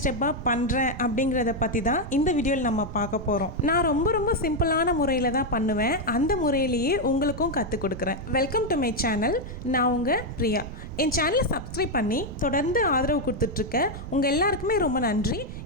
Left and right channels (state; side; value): noise; right; rumble, 10 dB below the sound